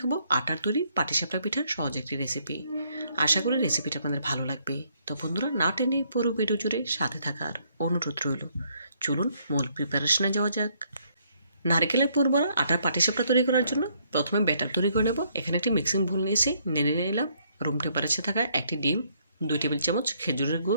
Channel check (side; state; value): both; inverted; correlation -0.69